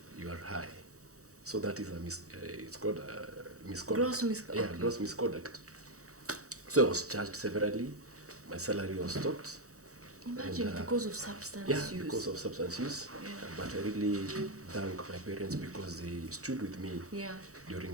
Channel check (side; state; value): left; late; 0.65 ms